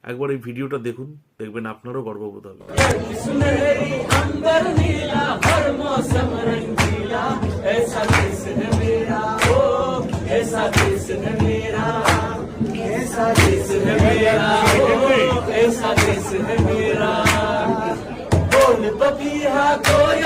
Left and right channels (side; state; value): both; identical; correlation 1.00